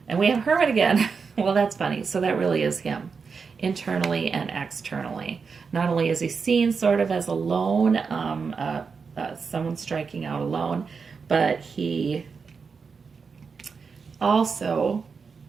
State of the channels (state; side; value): quieter; left; 5.3 dB